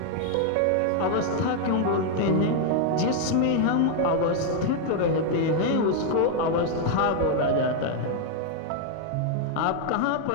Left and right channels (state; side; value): different; both; correlation 0.00